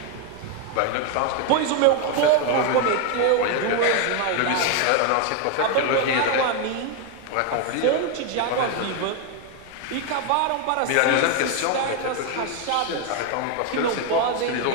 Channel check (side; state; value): both; different; correlation 0.01